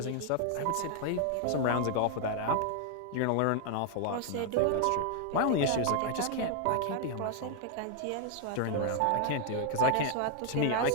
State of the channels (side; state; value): both; different; correlation 0.00